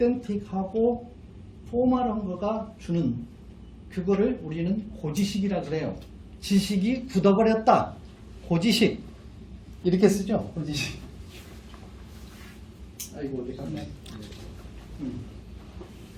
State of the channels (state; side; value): identical; both; correlation 1.00